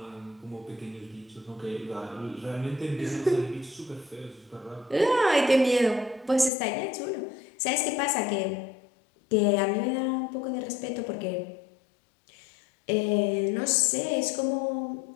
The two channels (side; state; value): right; drops out; at 6.5 s